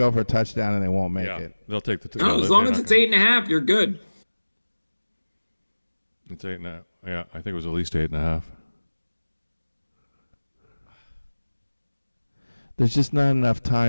for a touchdown and they won't make it. They'll take the. No, as long as it's 8.5, you're good. It's 8.5. Yeah, I think it was at least 8.5. There's just not enough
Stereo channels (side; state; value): both; inverted; correlation -1.00